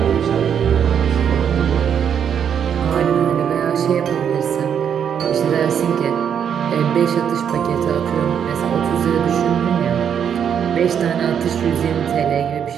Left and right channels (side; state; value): left; quieter; 8.2 dB